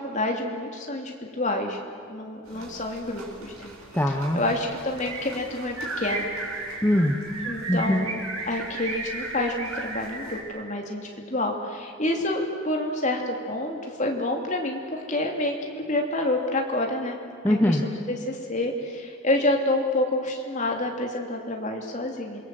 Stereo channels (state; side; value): normal; both; correlation 0.32